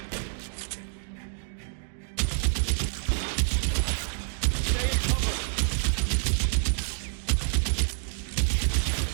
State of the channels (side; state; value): left; silent; digital silence